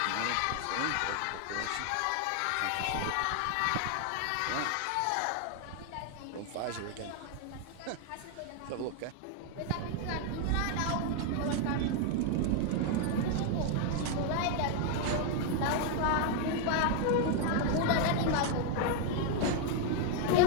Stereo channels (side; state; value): both; different; correlation 0.00